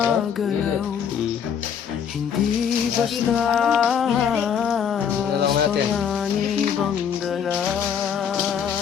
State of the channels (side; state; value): right; quieter; 7.9 dB